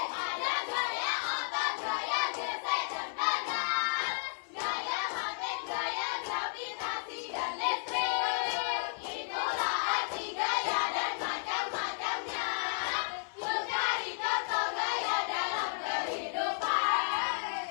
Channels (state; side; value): silent; right; 56 dB below the other